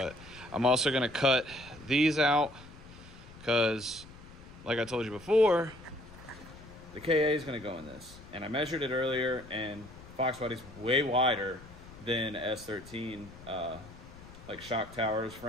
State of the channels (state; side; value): noise; left; rumble, 18 dB below the sound